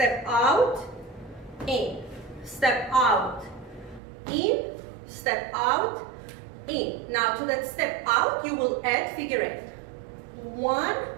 out, in, step out, in, step out, in. Now to that step out, you will add figure eight. 1,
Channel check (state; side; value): drops out; left; at 4.0 s